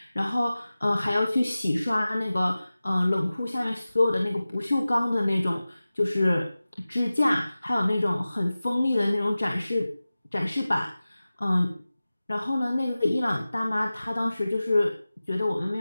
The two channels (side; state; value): both; inverted; correlation -0.97